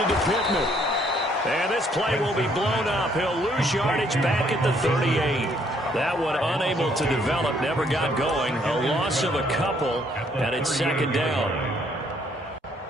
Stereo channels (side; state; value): both; normal; correlation 0.67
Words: to Pittman. And this play will be blown up. He'll lose yardage back at the 38. That one unable to develop, never got going. A loss of a couple, and it's second down.